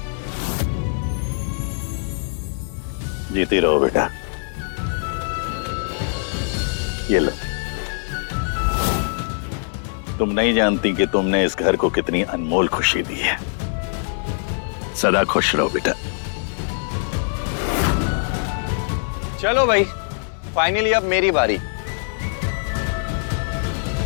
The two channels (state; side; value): silent; right; 60 dB below the other